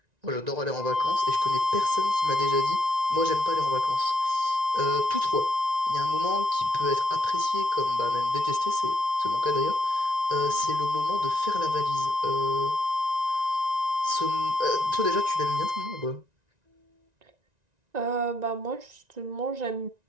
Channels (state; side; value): late; left; 1.9 ms